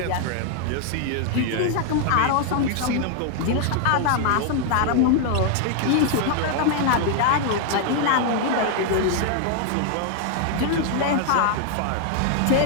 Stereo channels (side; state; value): both; different; correlation 0.00